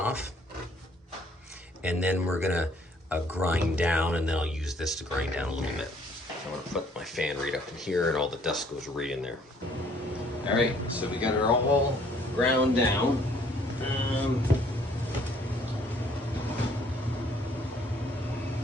And then we're gonna grind down, and then I'll use this to grind down a little bit. I'm gonna put my fan right up in here, and all the dust goes right in there. All right, so we got it all ground down.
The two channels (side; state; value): both; normal; correlation 0.61